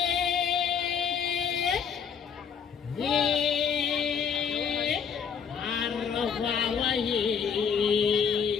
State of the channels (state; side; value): quieter; right; 6.9 dB